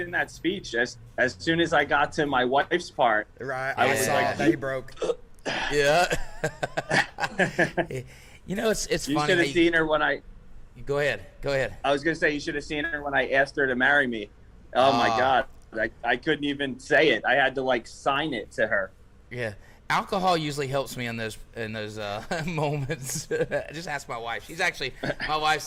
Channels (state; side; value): identical; both; correlation 1.00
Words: that speech, as soon as I got to my wife's part, right, I was saw like, that he broke. Yeah. It's you funny. should have seen her when I. Go ahead. I was gonna say you should have seen her when I asked her to marry me. Oh my God, I couldn't even say it. I had to sign it to her. Yeah. Alcohol usually helps me in those moments. Just ask my wife. My wife's